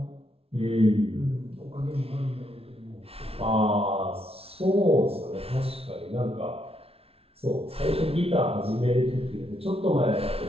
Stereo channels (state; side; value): late; left; 0.28 ms